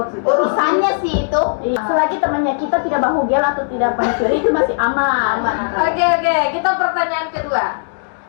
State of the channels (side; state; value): right; silent; digital silence